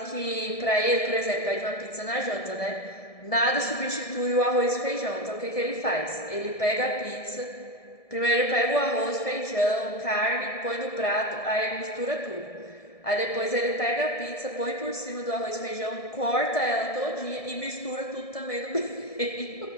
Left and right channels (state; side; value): late; right; 1.7 ms